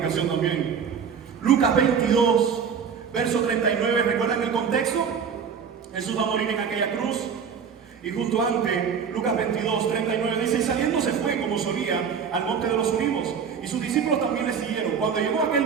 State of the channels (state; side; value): quieter; left; 6.7 dB